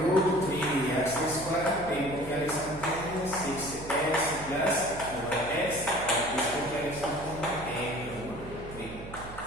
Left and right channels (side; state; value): right; noise; hum, 14 dB below the sound